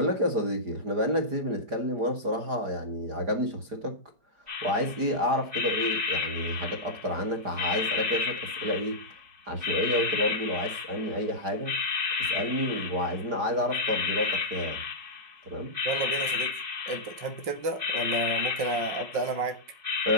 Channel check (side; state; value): left; late; 4.9 ms